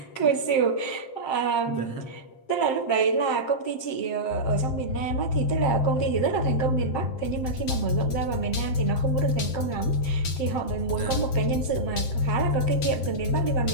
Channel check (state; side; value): late; right; 7.6 ms